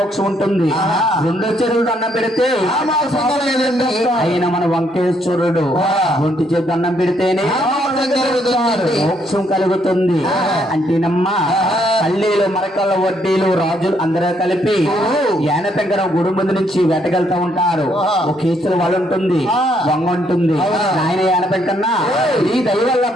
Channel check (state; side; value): normal; both; correlation 0.71